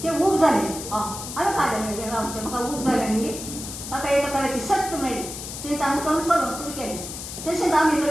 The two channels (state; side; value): noise; left; hiss, 9 dB below the sound